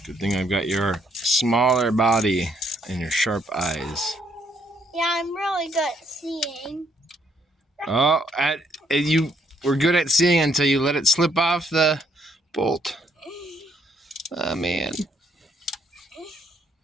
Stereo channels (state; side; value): normal; both; correlation 0.70